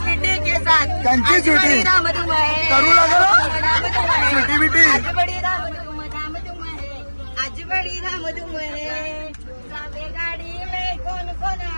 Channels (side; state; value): both; inverted; correlation -1.00